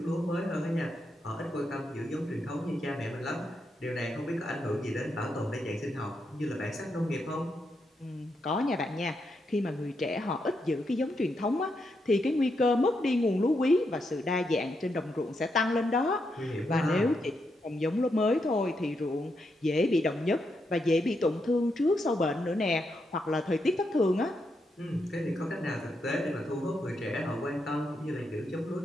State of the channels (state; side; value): normal; both; correlation 0.82